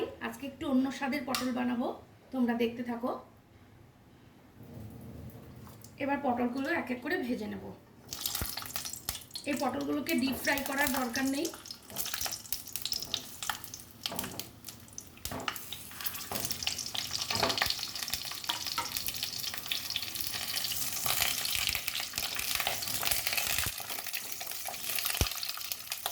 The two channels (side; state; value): both; identical; correlation 1.00